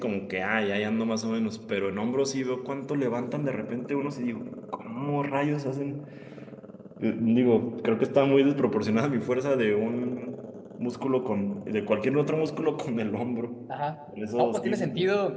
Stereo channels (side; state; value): both; identical; correlation 1.00